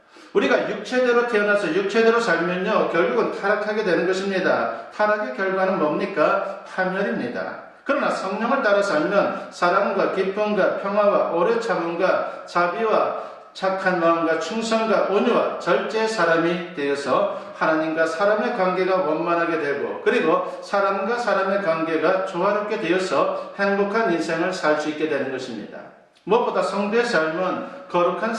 우리가 육체대로 태어나서 육체대로 살면요, 결국은 타락하게 되는 것입니다. 타락의 결과는 뭡니까? 파멸입니다. 그러나 성령을 따라 살면 사랑과 기쁨과 평화와 오래 참음과 자비와 착한 마음과 충성과 온유와 절제의 사람이 되어서 하나님과 사람의 관계가 원만하게 되고, 그리고 사람과 사람의 관계가 조화롭게 되어서 행복한 인생을 살 수 있게 되는 것입니다. 무엇보다 성도의 삶은 거룩한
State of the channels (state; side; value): identical; both; correlation 1.00